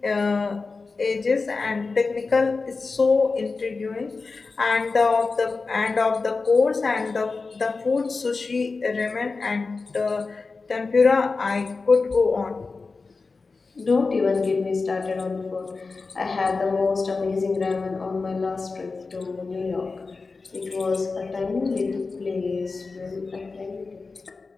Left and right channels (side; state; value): right; quieter; 4.1 dB